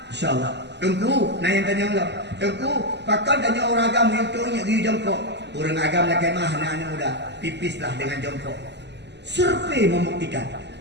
InsyaAllah. Tunggu. Nah yang tanya Allah. Tunggu. Pakai tanya orang agam yang tu yang pergi jongkok. Orang agam lagi mah anak-anak muda. Pipislah dengan jongkok. Survei membuktikan.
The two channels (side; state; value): left; late; 0.50 ms